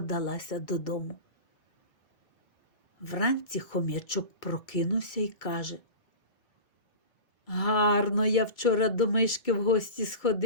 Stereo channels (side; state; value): right; late; 2.2 ms